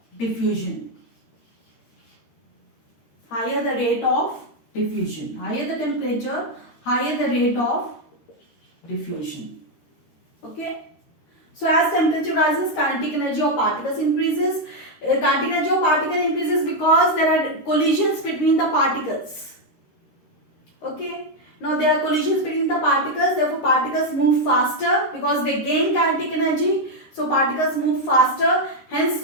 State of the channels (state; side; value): late; right; 13 ms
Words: diffusion. Higher the rate of diffusion. Higher the temperature, higher the rate of diffusion. Okay. So as temperature rises, kinetic energy of particles increases. Kinetic energy of particles increases because there are collisions between the particles. Okay. Now there are collisions between the particles, therefore particles move faster because they gain kinetic energy. So particles move faster,